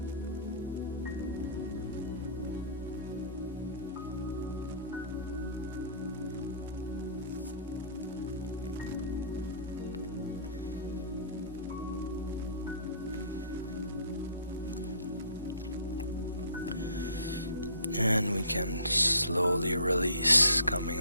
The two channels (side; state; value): both; inverted; correlation -0.51